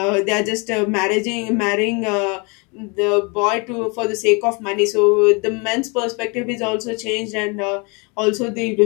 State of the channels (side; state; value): right; quieter; 30.9 dB